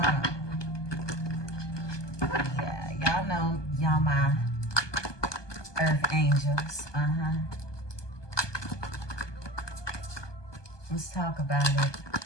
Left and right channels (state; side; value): late; right; 1.2 ms